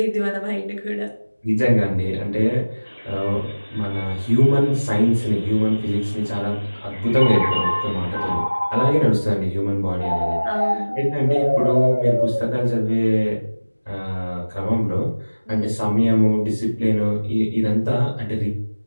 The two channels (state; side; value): inverted; both; correlation -1.00